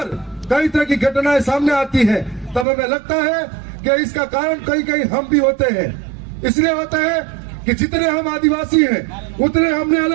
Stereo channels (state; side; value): drops out; left; at 2.7 s